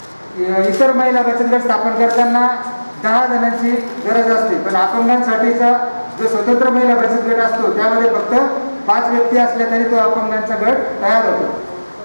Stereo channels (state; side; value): inverted; both; correlation -1.00